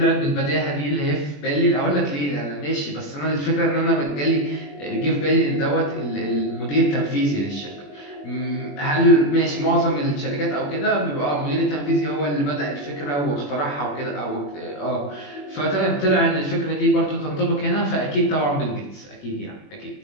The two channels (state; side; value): late; right; 21 ms